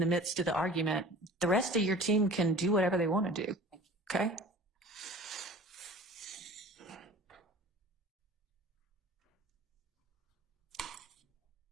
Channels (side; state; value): both; normal; correlation 0.43